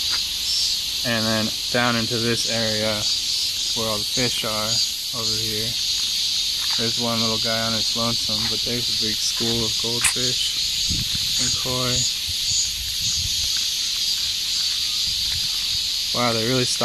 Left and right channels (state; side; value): identical; both; correlation 1.00